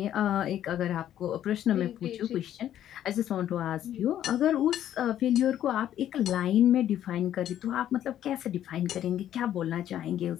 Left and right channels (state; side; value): quieter; right; 11.3 dB